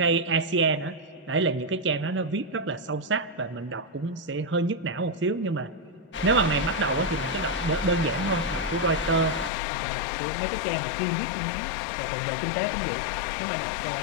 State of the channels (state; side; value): drops out; right; at 9.5 s